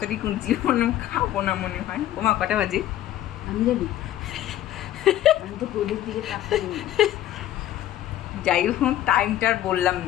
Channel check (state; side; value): quieter; right; 13.1 dB